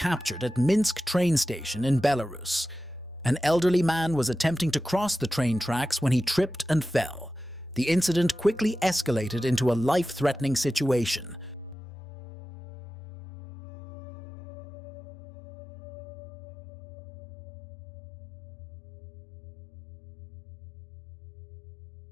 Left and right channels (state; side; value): drops out; right; at 11.8 s